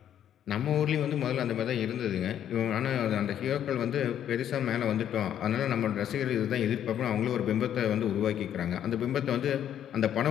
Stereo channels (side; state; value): right; quieter; 10.1 dB